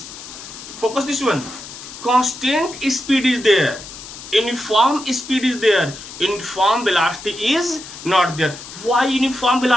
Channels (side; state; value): left; noise; hiss, 14 dB below the sound